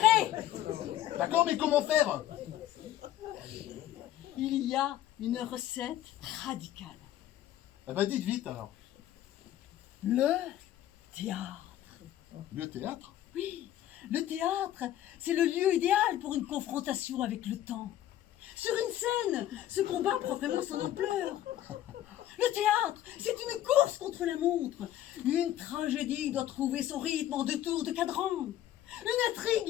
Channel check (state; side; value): quieter; right; 12.7 dB